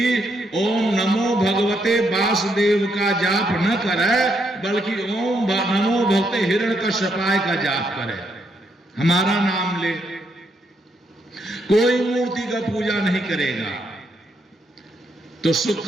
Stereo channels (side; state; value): both; normal; correlation 0.77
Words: ओम नमो भगवते वासुदेव का जाप न करे, बल्कि ओम नमो भगवते हिरण्यकश्यपाय का जाप करे, हमारा नाम ले। कोई मूर्ति का पूजा नहीं करेगा। तो